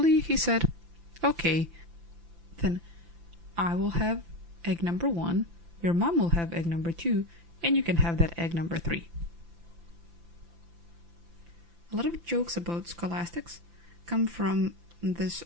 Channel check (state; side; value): late; left; 5.9 ms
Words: he said, okay, then I will have egg number 1, your mom will have egg number 2, and you can have that egg number 3. A lot of jokes about scholastics come from this